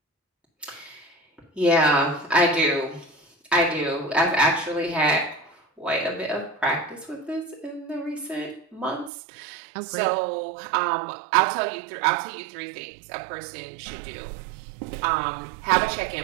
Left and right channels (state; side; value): drops out; left; at 9.1 s